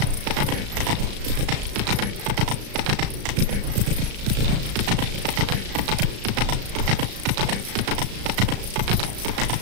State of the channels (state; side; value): late; left; 35 ms